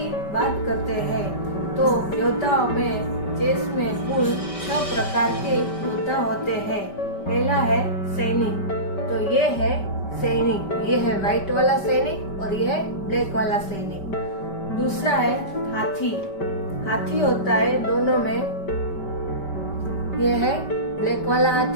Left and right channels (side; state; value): right; late; 5.2 ms